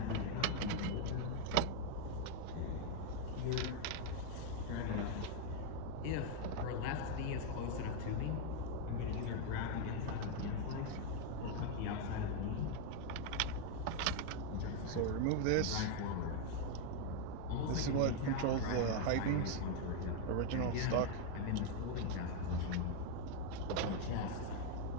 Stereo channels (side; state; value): both; different; correlation 0.01